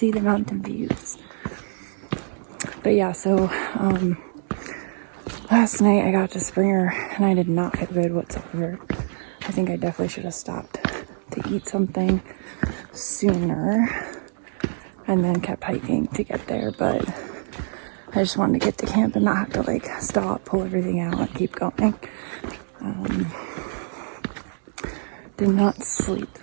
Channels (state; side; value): silent; left; digital silence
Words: the mountain views. But yeah, so last night I got to Springer and I did not feel good whatsoever. I think I definitely should have stopped to eat something sooner and then kept hiking to get there, but I just wanted to get to camp and not have to like stop, pull everything out, and keep going. Did not sleep